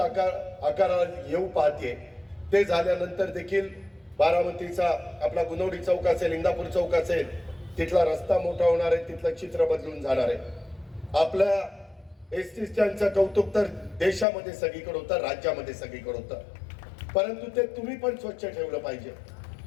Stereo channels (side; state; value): right; drops out; at 14.2 s